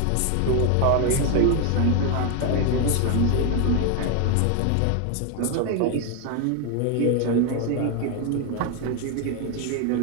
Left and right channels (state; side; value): different; both; correlation 0.01